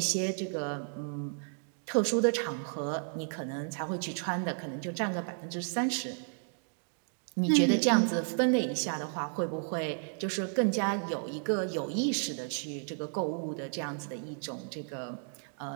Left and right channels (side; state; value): left; silent; 56 dB below the other